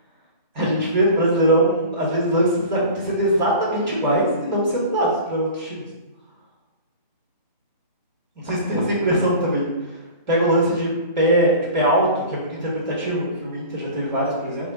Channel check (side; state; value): both; inverted; correlation -0.38